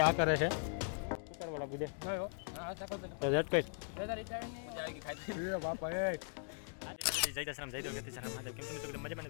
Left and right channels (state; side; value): silent; right; digital silence